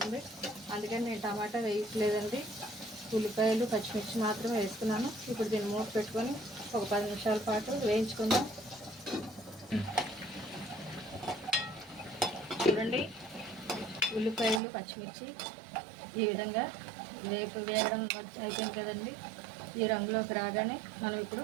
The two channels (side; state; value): left; drops out; at 14.6 s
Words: అందుకని నేను టమాటా వేయట్లేదండి, ఉల్లిపాయలు పచ్చిమిర్చి మాత్రమే వేసుకున్నాను. ఇప్పుడు దీన్ని మూత పెట్టుకొని ఒక 10 నిమిషాల పాటు వేయించుకుందాం. చూడండి, ఉల్లిపాయలు పచ్చిమిర్చి ఈ విధంగా వేగడం అయిపోయింది కదండి. ఈ రంగులోకి రాగానే మనం